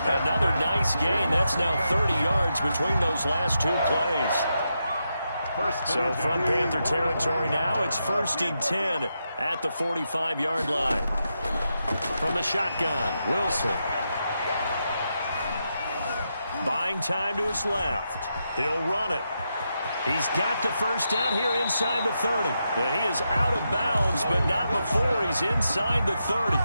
Another nice gain. That's now 30 yards between those last 2 plays. So from Panther territory now, it's 1st and 10 at the 45-yard line. From the shotgun, Wilson. Buying time to his left. He'll run it. He's got the 1st down here inside the 30. And he is out of bounds, but not before he's inside the 30.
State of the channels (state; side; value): inverted; both; correlation -0.85